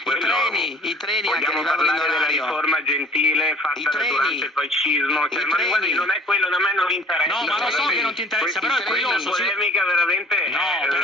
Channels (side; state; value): both; normal; correlation 0.53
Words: I treni vogliamo anche parlare della riforma Gentile fatta durante il fascismo, cioè, ma guardi, non è quello, a me non interessa. No, ma lo so che non ti interessa, però è curioso. La polemica veramente